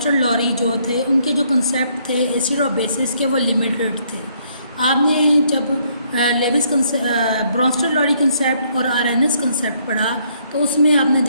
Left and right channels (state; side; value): inverted; both; correlation -0.69